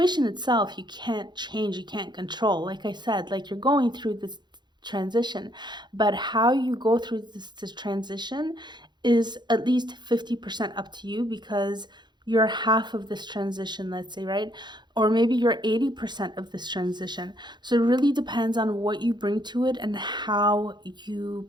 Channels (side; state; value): left; late; 0.21 ms